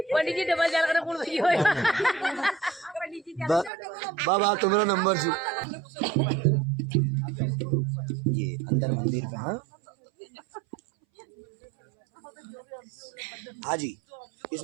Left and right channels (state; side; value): drops out; left; at 3.7 s